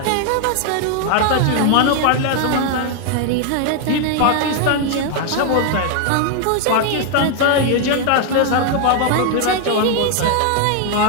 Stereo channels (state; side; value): different; both; correlation 0.00